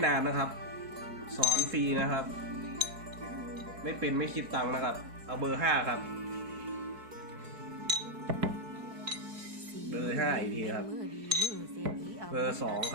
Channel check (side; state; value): left; late; 4.6 ms